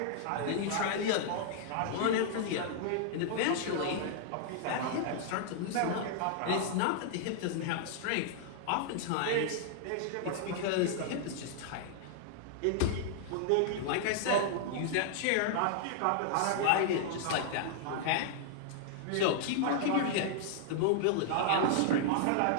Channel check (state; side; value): different; both; correlation -0.01